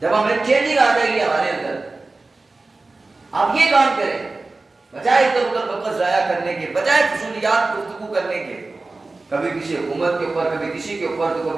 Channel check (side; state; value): left; quieter; 3.4 dB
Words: جب ہمیں چینجنگ آ جائے گی ہمارے اندر. آپ یہ کام کریں، بجائے ادھر ادھر وقت ضائع کرنے کے، بجائے فضولیات گفتگو کرنے کے، کبھی کسی حکومت کے اوپر، کبھی کسی کے اوپر، تو